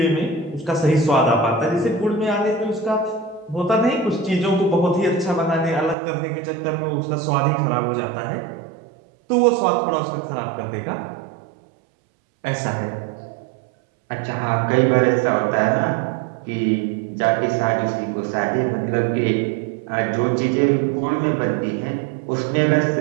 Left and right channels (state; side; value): drops out; left; at 6.0 s